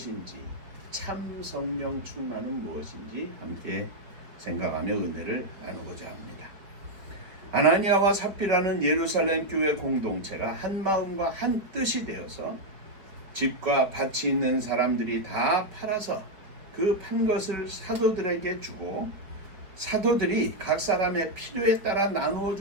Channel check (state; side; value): late; left; 4.6 ms